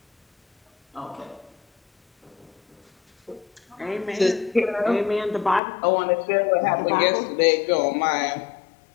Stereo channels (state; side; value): drops out; right; at 5.6 s